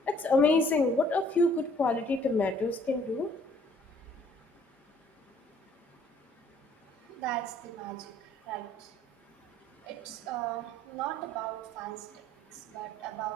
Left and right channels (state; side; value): normal; both; correlation 0.60